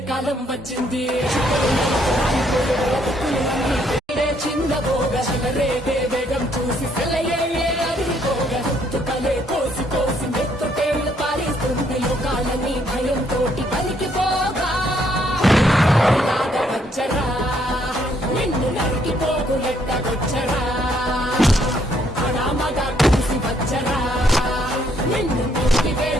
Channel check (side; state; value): both; normal; correlation 0.69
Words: కాలం వచ్చింది చిన్నబోగ రేగే వేగం చూసి సెలయే అదిరిపోగా తుకలే కోసి కోసి మెత్తుటేళ్లు పారిస్తుంది లోకాలని భయంతోటి పలికిపోగా వచ్చరా నిన్ను నరికిపోకు ఎట్టగొచ్చరా అనామగా కలిసి వచ్చరా నిన్ను ముక్తి